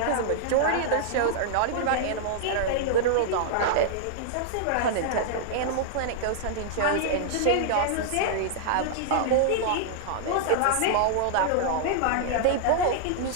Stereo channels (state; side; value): different; both; correlation -0.01